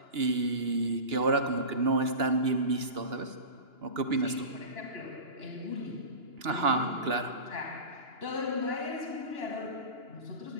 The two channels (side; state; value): left; late; 2.9 ms